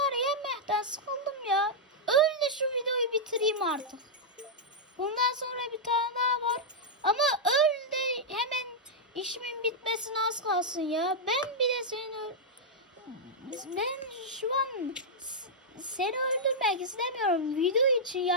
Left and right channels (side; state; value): both; normal; correlation -0.06